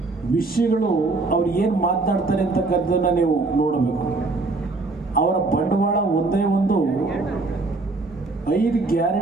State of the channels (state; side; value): quieter; left; 3.5 dB